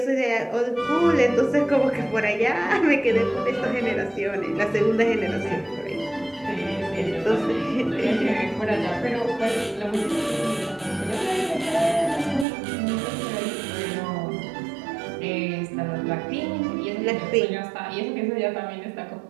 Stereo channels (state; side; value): drops out; left; at 12.5 s